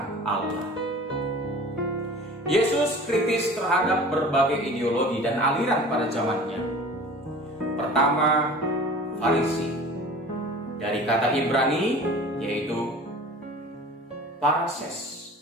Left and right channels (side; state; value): both; normal; correlation 0.42